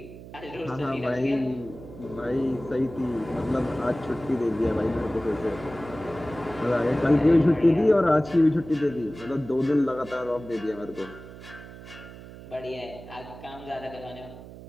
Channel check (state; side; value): noise; right; hum, 15 dB below the sound